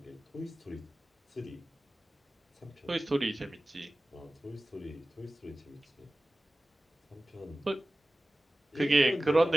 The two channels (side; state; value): both; normal; correlation 0.97